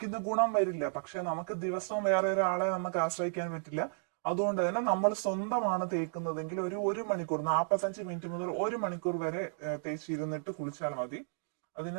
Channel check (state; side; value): silent; left; digital silence